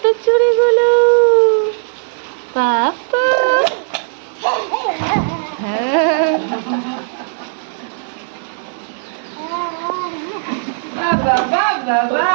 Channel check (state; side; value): silent; left; digital silence